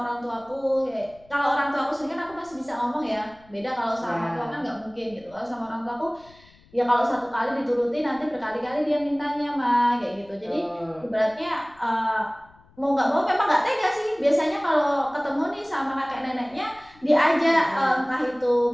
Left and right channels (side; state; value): left; noise; rumble, 28 dB below the sound